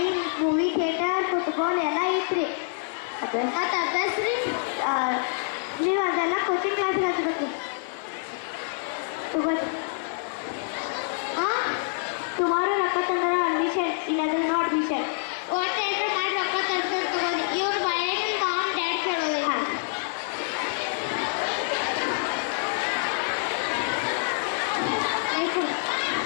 movie theatre, football ಎಲ್ಲ ಐತ್ರಿ. ಮತ್ತು ಅಭ್ಯಾಸ ರೀ ನೀವು ಅದೆಲ್ಲ ಕೋಚಿಂಗ್ ಕ್ಲಾಸ್ ಹಚ್ಬೇಕು ತಗೋರಿ. ಟುಮಾರೋ ರೊಕ್ಕ ತಂದ್ರೆ ಅಡ್ಮಿಷನ್, ಇಲ್ಲಾಂದ್ರೆ ನೋ ಅಡ್ಮಿಷನ್. ಒಟ್ಟು ಏನಾರು ಮಾಡಿ ರೊಕ್ಕ ತಂದ್ರೆ ತಗೋರಿ. ಇವ್ರು ಮನೆಯಲ್ಲಿ ಮಾಮ್ ಡ್ಯಾಡ್ ಕೇಳೋದು. ಹಾಂ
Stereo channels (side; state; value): right; silent; 56 dB below the other